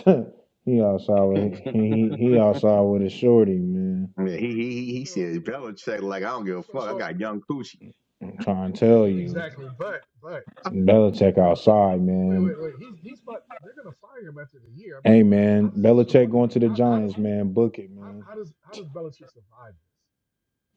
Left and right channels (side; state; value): both; identical; correlation 1.00